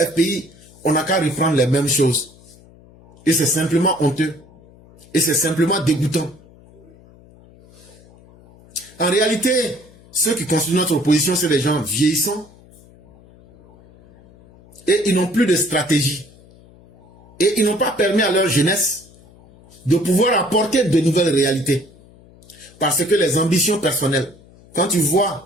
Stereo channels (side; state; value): left; noise; hum, 25 dB below the sound